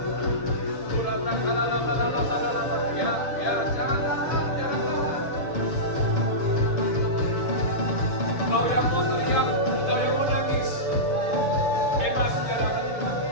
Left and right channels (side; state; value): right; late; 7.1 ms